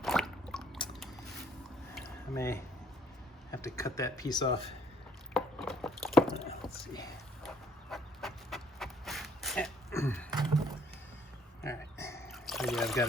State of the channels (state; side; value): normal; both; correlation 0.65